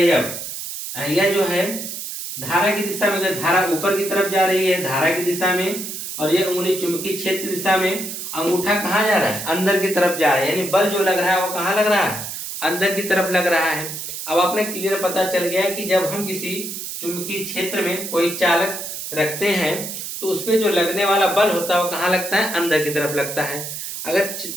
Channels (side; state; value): right; noise; hiss, 7 dB below the sound